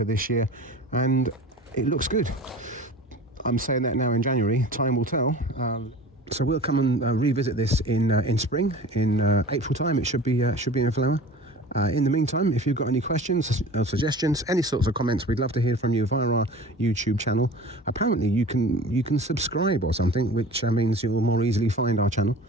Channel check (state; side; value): normal; both; correlation 0.39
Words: this year, and it looks good. I'm saying that now in January. Time will tell. So we'll come and revisit this in spring. In April time, it should be in flower. In the meantime, if you've got any questions or suggestions, any sorts of comments, we'd love to hear from you via our YouTube channel. Apparently you can subscribe or something, which means you'll more easily find our channel.